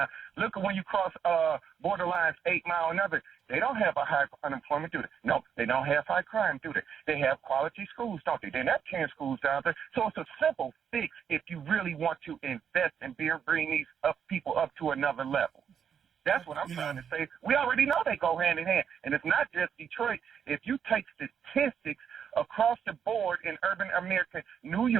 Look at when you cross borderlines 8 Mile and other. They don't have a high unemployment, do they? No, they don't have high crime, do they? They have quality schools, don't they? They're not 10 schools down there. So it's a simple fix if you really want to invest and bring these people up to another level. That's what I'm trying to say. We already know they go hand in hand. And it's not just Detroit. If you take statistics across the board in urban America, New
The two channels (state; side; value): quieter; left; 7.8 dB